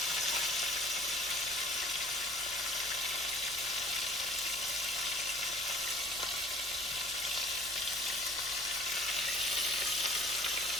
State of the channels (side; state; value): right; noise; rumble, 21 dB below the sound